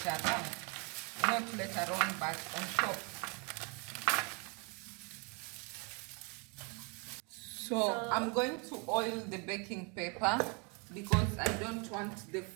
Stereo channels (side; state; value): left; quieter; 33.3 dB